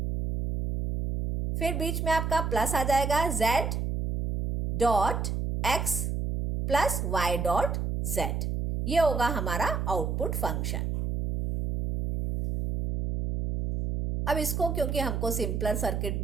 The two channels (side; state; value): right; noise; hum, 1 dB below the sound